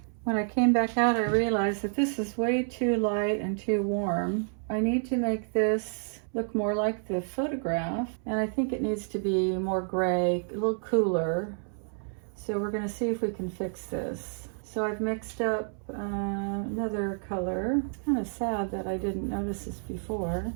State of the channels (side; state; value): left; silent; 58 dB below the other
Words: When I came back out, I realized that this is way too light and too warm. I need to make this look more like the photograph, and I think it needs to be more gray, a little cooler. So we're gonna see if we can fix this. So I've mixed up another color. It's kind of sad that I didn't notice this before,